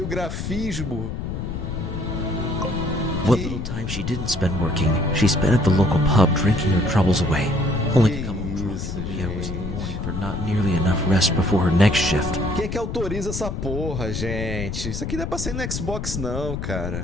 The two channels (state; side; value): noise; left; rumble, 5 dB below the sound